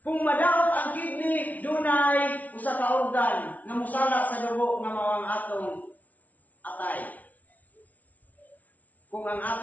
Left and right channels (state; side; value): late; right; 0.073 ms